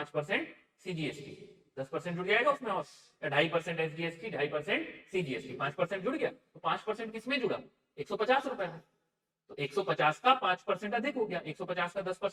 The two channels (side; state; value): both; identical; correlation 1.00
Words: CGST, 10% जुड़ जाएगा उसमें, और 2.5% SGST, 2.5% CGST, 5% जुड़ गया, तो 5% किसमें जुड़ा? 150 रुपए में। तो 150 का 5% अधिक हो गया, 150 का